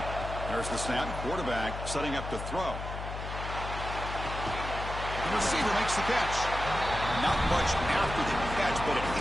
There's the snap. Quarterback setting up to throw. The receiver makes the catch. Not much after the catch, but it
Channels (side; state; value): left; noise; hum, 7 dB below the sound